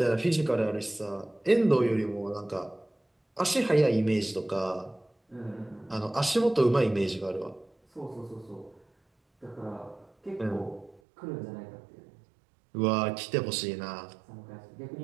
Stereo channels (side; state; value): left; drops out; at 11.0 s